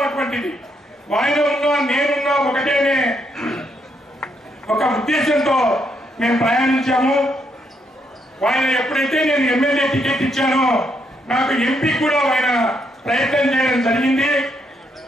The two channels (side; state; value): both; normal; correlation 0.76